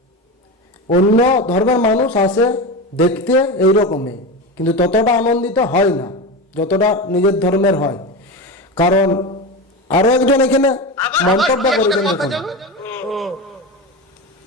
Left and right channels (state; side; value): normal; both; correlation 0.22